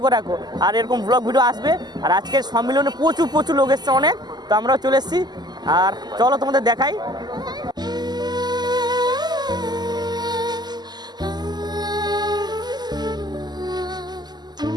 করে রাখো। আর এরকম ব্লগ ভিডিও আসবে। আর আজকের সম্মেলনে প্রচুর প্রচুর লোক এসছে অনেক, তো আমরাও চলে এসেছি। আর চলো তোমাদের দেখাই।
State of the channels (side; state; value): left; late; 0.20 ms